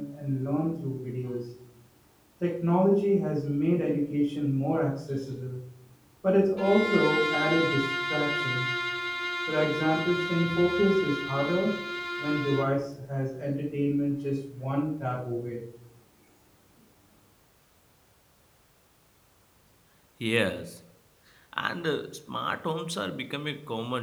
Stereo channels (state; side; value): identical; both; correlation 1.00